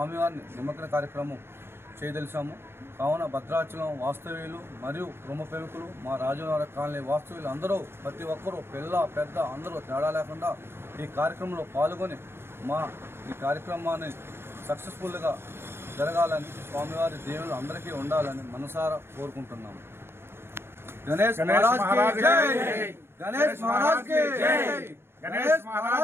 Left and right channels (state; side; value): late; left; 0.11 ms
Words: నిమజ్జన కార్యక్రమం చేయదలిచాము. కావున భద్రాచలం వాస్తవ్యులు మరియు ప్రముఖులు, మా రాజవనగర కాలనీ వాస్తవ్యులు అందరూ ప్రతి ఒక్కరూ పిల్ల పెద్ద అందరూ తేడా లేకుండా ఈ కార్యక్రమంలో పాల్గొని ఈ కార్యక్రమాన్ని సక్సెస్ఫుల్గా జరగాలని స్వామివారి దేవుళ్ళు అందరికీ ఉండాలని మనసారా కోరుకుంటున్నాము. గణేష్ మహారాజ్ కి జై, గణేష్ మహారాజ్ కి జై, గణేష్